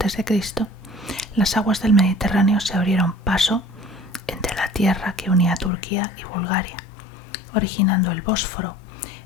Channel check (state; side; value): drops out; right; at 5.7 s